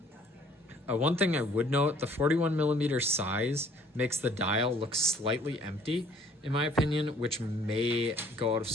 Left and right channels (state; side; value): normal; both; correlation 0.57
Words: one thing I would note, the 41mm size makes the dial look slightly empty, in my opinion, which may go out of